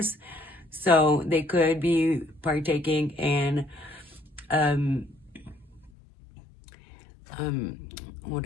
So they could be partaking in what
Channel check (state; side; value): drops out; right; at 5.9 s